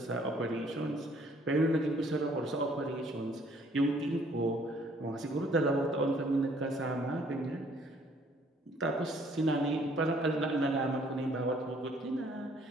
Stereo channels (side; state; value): both; normal; correlation 0.61